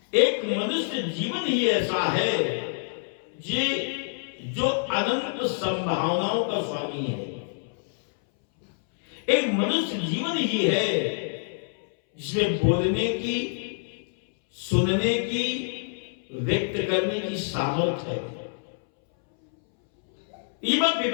एक मनुष्य जीवन ही ऐसा है जो अनंत संभावनाओं का स्वामी है। एक मनुष्य जीवन ही है जिसमें बोलने की, सुनने की, व्यक्त करने की सामर्थ्य है। ये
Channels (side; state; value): right; silent; 61 dB below the other